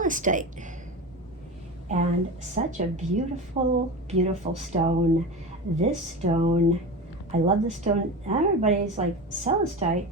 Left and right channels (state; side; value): normal; both; correlation 0.26